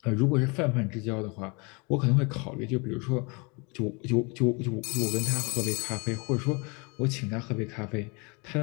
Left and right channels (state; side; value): quieter; right; 30.5 dB